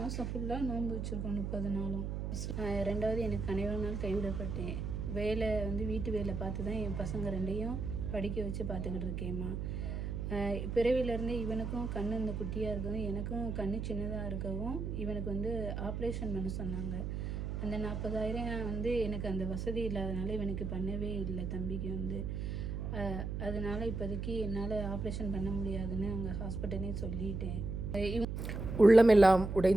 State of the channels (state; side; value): noise; right; hum, 3 dB below the sound